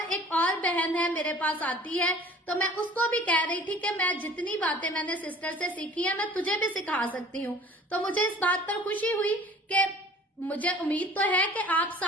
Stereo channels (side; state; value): both; normal; correlation 0.47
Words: एक और बहन है मेरे पास आती है, तो मैं उसको भी कह रही थी कि मैं जितनी बातें मैंने सिस्टर से सीखी है मैं तुझे भी सिखा सकती हूँ। तो मुझे इस बात पर खुशी हुई कि मुझे उम्मीद तो है कि आप